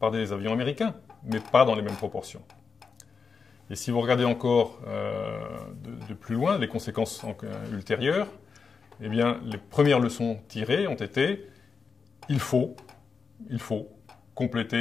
des avions américains, mais pas dans les mêmes proportions. Et si vous regardez encore de plus loin les conséquences ultérieures, eh bien, les premières leçons tirées ont été il faut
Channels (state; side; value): quieter; right; 5.3 dB